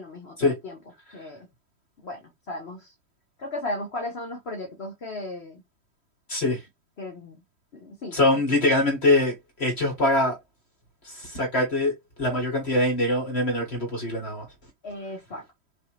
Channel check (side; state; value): right; late; 3.1 ms